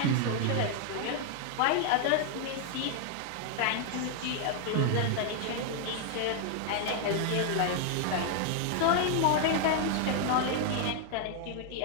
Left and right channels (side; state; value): both; different; correlation 0.00